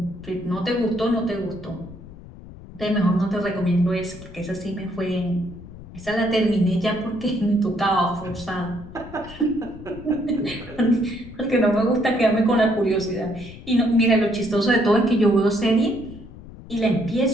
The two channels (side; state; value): left; noise; rumble, 16 dB below the sound